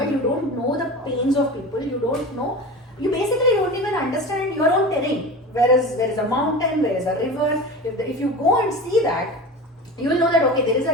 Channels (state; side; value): normal; both; correlation 0.31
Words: you don't know the pains of people, you don't know, you basically don't even understand your own terrain. Where is a mountain, where is a river. If you go and see that, you will know that okay, there is